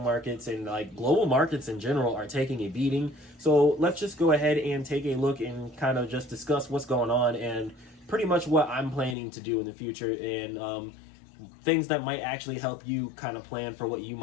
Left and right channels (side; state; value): right; drops out; at 9.2 s